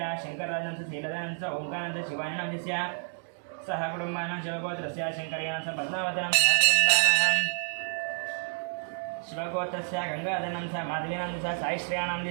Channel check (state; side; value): silent; left; 58 dB below the other